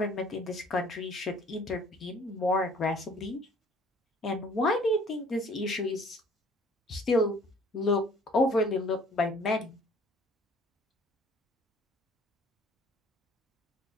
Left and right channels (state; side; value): normal; both; correlation 0.55